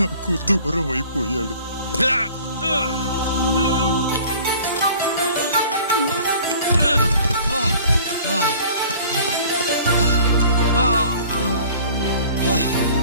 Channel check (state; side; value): inverted; both; correlation -0.48